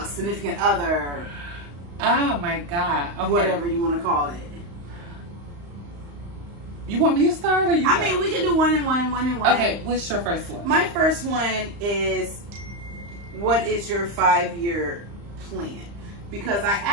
significant other. Oh my God. Okay. Whatever you want to call it. You want me to start or you? I mean, we can do one and one. Okay, what's your first one? My first one is, what is your 5-year plan? Because I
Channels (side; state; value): left; late; 35 ms